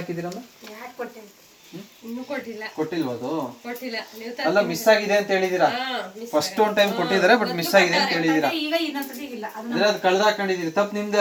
ಹಾಕಿದ್ದೀರಮ್ಮ? ಕೊಟ್ಟಿಲ್ವ? ಅದು ಅಲ್ಲ, ಮಿಸ್ ಆಗಿದೆ ಅಂತ ಹೇಳಿದೀರಾ. ಫಸ್ಟ್ ಒಂದು ಟೈಮ್ ಕೊಟ್ಟಿದ್ದಾರೆ, ಬಟ್ ಮಿಸ್ ಆಗಿದೆ ಅಂತ ಹೇಳಿದೀರಾ. ಅಂದ್ರೆ ಅದು ಕಳ್ದ ಹಾಕೊಂಡಿದೀರಿ, ತಪ್ಪು ನಿಮ್ದೇ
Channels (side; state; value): both; identical; correlation 1.00